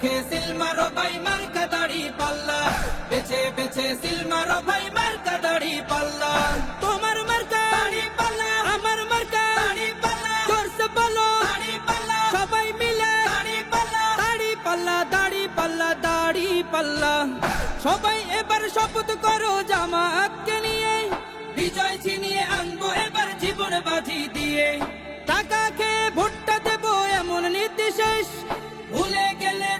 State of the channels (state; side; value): identical; both; correlation 1.00